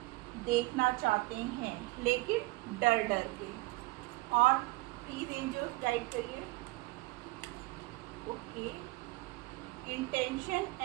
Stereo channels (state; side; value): quieter; left; 22.0 dB